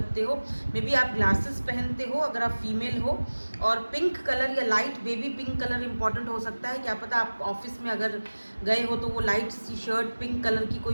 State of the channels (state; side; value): inverted; both; correlation -1.00